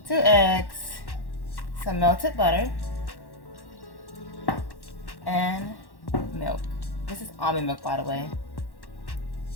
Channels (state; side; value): late; right; 1.1 ms